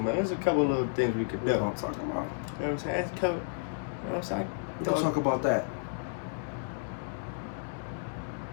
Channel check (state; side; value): silent; right; 57 dB below the other